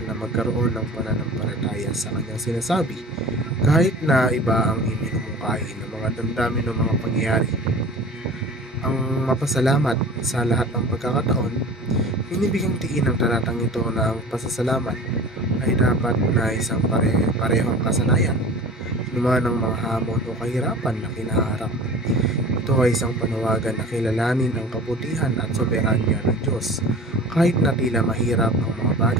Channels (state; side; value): normal; both; correlation 0.39